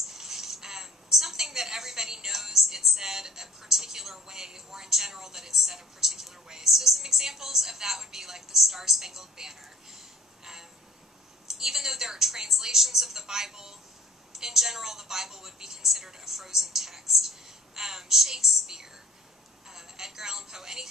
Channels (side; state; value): both; normal; correlation 0.50